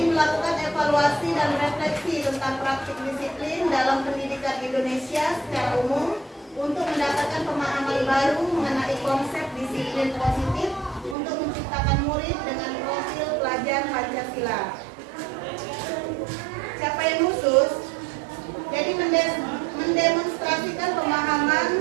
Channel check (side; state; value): left; drops out; at 11.2 s